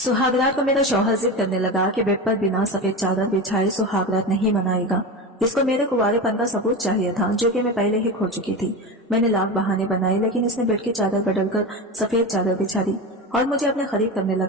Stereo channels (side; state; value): both; normal; correlation 0.23